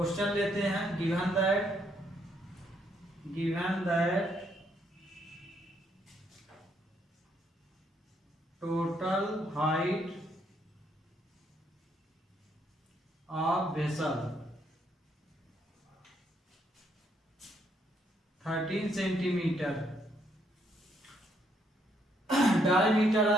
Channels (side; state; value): both; normal; correlation 0.72